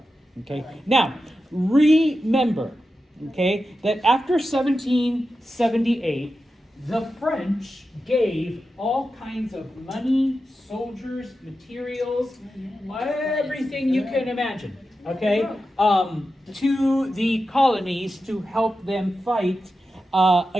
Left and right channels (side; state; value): both; normal; correlation 0.91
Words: okay. Now, remember, okay, that after 1778, the French gave all kinds of money, soldiers, materials, everything you can imagine, okay, to the colonies to help them fight